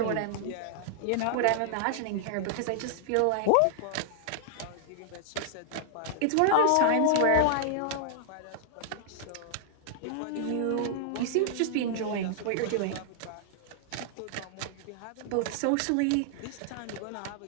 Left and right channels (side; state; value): both; different; correlation -0.01